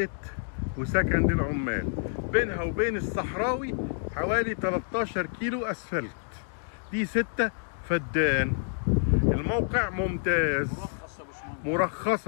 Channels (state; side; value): silent; right; digital silence